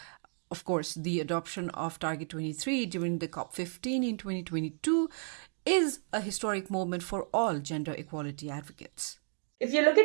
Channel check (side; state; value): left; silent; 56 dB below the other